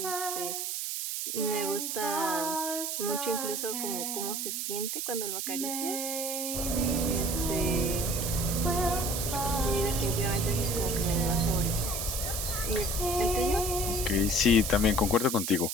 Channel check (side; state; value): right; noise; hiss, 2 dB below the sound